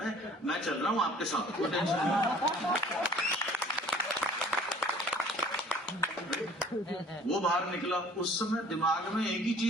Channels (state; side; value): normal; both; correlation 0.52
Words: मैं चल रहा हूँ आपके साथ, कोई टेंशन नहीं। वो बाहर निकला, उस समय दिमाग में एक ही